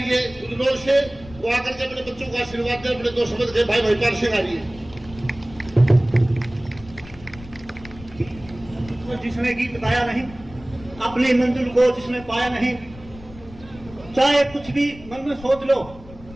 है उदलोर से, वो आकर के अपने बच्चों को आशीर्वाद दे, अपने दो शब्द के भाई महिपाल सिंह आ रही है। जिसने गीत गाया नहीं, अपनी मंजिल को जिसने पाया नहीं, चाहे कुछ भी मन में सोच लो,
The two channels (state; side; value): noise; left; rumble, 19 dB below the sound